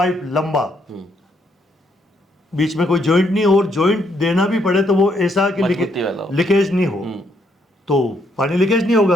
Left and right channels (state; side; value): normal; both; correlation 0.74